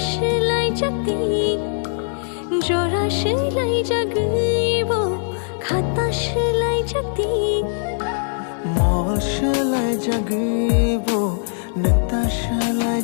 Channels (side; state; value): right; silent; digital silence